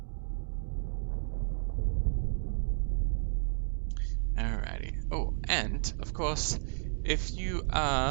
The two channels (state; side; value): silent; left; digital silence